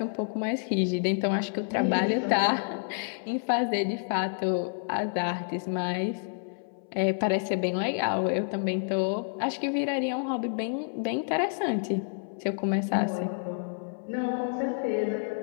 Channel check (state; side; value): silent; right; 59 dB below the other